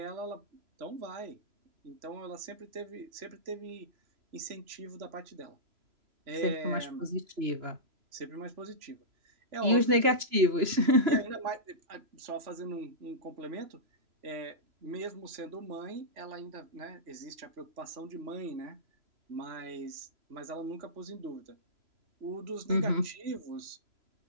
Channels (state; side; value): late; left; 2.9 ms